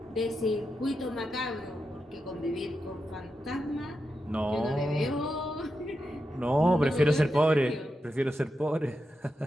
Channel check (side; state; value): both; normal; correlation 0.87